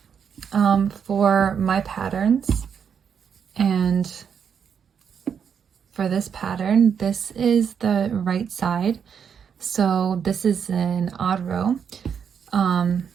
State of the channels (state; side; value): quieter; left; 7.3 dB